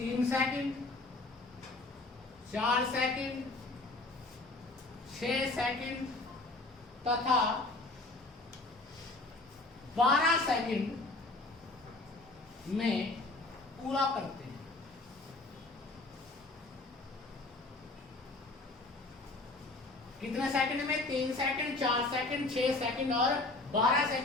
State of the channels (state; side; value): quieter; right; 3.1 dB